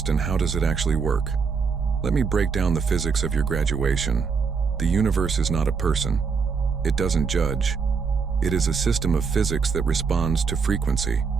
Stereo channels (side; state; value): left; quieter; 5.5 dB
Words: and how does it actually work? Let me break down the physics of your graduation. The universe is not a person. It doesn't judge. It is a system of physics that responds to frequency.